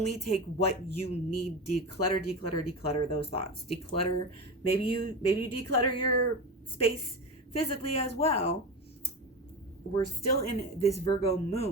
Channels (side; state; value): both; normal; correlation 0.23